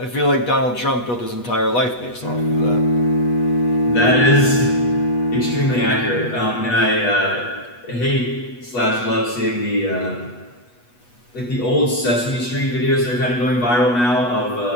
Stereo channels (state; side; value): late; right; 8.2 ms